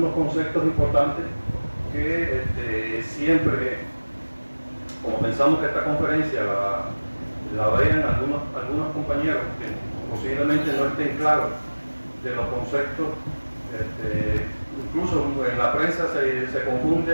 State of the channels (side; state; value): both; inverted; correlation -1.00